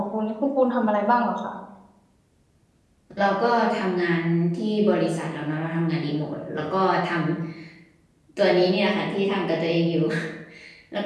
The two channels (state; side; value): identical; both; correlation 1.00